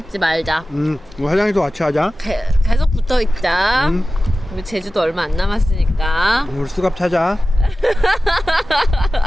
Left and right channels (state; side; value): normal; both; correlation 0.95